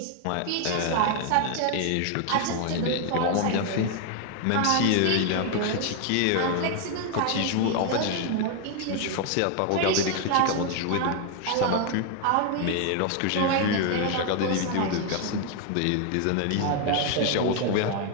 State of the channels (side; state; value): both; different; correlation 0.00